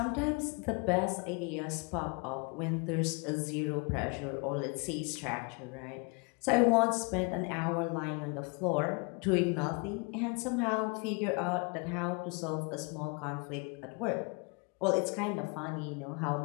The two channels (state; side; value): quieter; right; 32.8 dB